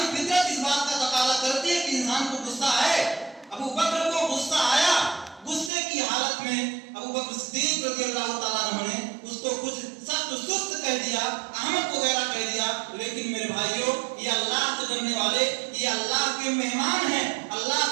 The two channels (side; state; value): left; drops out; at 5.7 s